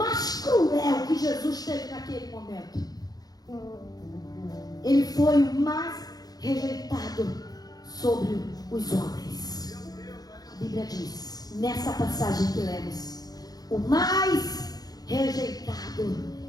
cruel que Jesus teve naquele momento. Ele foi o mais rejeitado sobre os homens. A Bíblia diz, nessa passagem que lemos, o mais rejeitado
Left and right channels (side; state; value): right; late; 0.19 ms